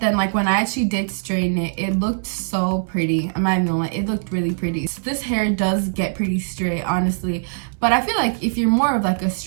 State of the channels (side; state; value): left; silent; digital silence